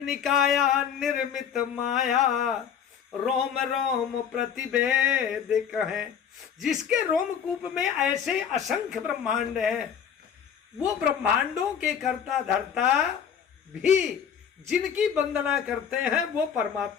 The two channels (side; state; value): right; quieter; 8.0 dB